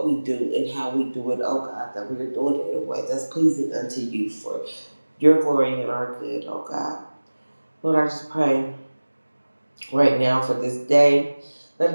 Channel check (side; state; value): both; inverted; correlation -1.00